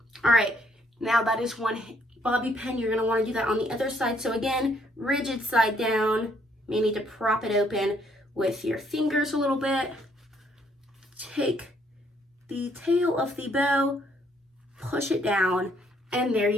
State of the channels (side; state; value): both; normal; correlation 0.68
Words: All right, now that is one bobby pin. You're going to want to do that on the other side. So again, rigid side down. You may need to prop it open with your fingers a little bit. Take the tail of the bow, push it down, and there